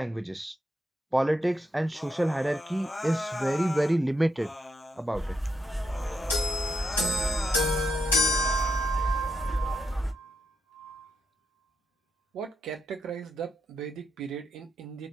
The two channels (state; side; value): normal; both; correlation 0.83